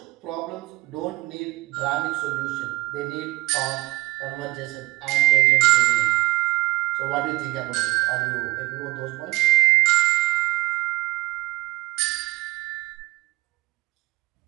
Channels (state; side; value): quieter; left; 21.5 dB